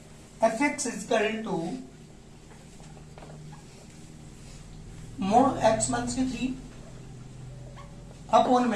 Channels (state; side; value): identical; both; correlation 1.00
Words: f x is equal to mod x minus की 3 अपॉन